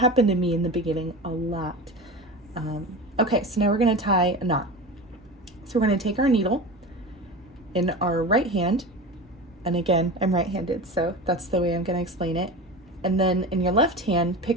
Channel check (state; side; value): normal; both; correlation 0.29